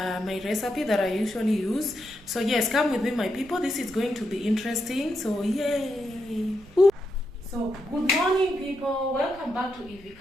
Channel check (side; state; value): right; noise; rumble, 25 dB below the sound